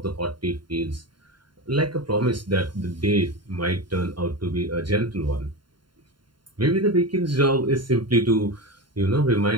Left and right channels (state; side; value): late; left; 0.72 ms